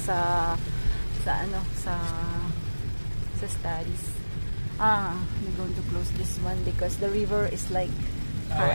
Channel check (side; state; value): both; inverted; correlation -1.00